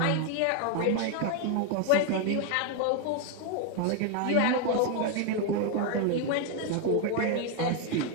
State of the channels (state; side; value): different; both; correlation 0.01